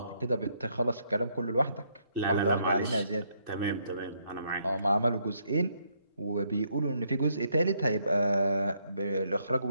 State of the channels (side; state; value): both; inverted; correlation -0.73